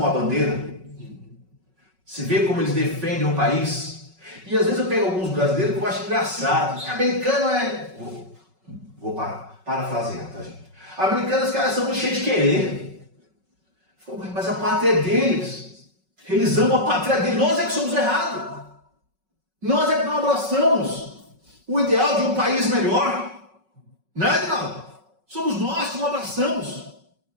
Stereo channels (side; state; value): left; late; 5.4 ms